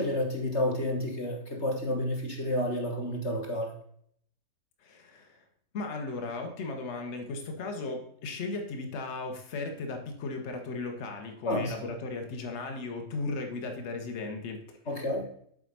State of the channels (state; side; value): late; right; 3.3 ms